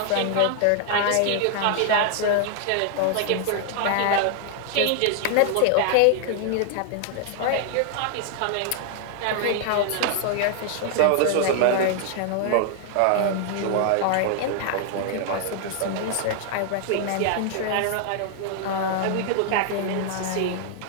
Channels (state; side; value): different; both; correlation 0.00